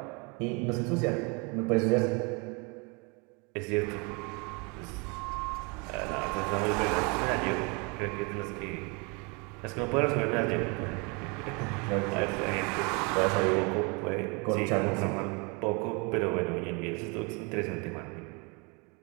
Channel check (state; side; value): quieter; left; 31.0 dB